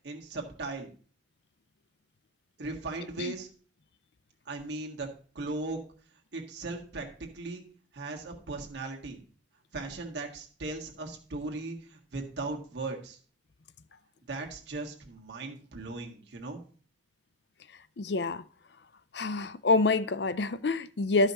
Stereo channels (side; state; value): both; normal; correlation -0.05